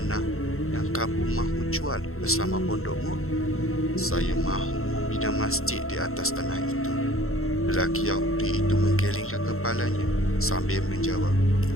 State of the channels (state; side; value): late; right; 0.62 ms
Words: yang kamu mahu jual bersama pondokmu?" "Saya mahu membina masjid di atas tanah itu." Lelaki Yahudi itu menggelengkan kepalanya sambil menjawab,